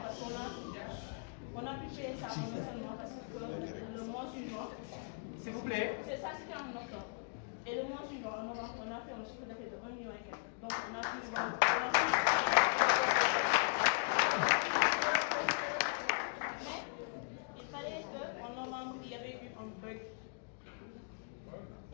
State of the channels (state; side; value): quieter; right; 37.2 dB